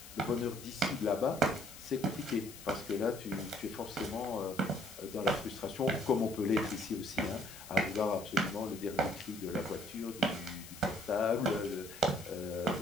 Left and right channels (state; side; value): noise; left; hiss, 15 dB below the sound